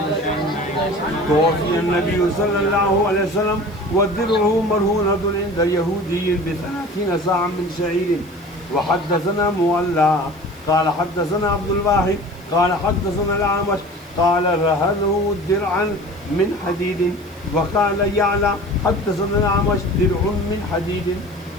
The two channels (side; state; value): right; noise; hiss, 28 dB below the sound